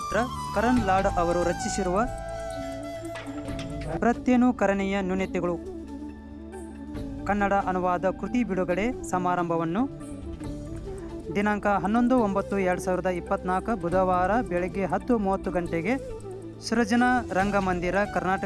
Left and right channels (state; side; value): identical; both; correlation 1.00